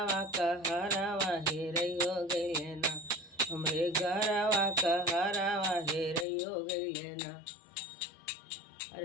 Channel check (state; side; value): drops out; right; at 6.2 s